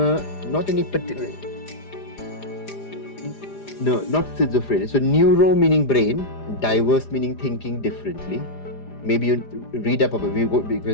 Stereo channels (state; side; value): late; right; 4.9 ms